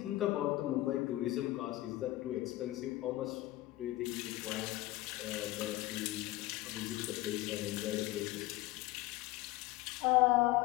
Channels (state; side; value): quieter; right; 17.6 dB